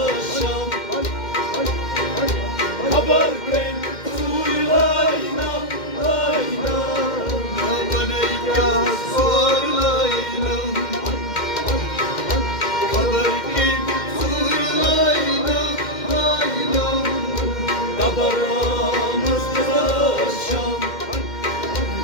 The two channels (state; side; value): late; right; 2.1 ms